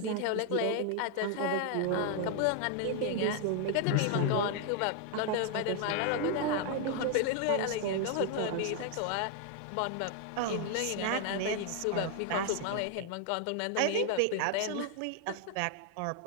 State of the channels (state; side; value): different; both; correlation 0.00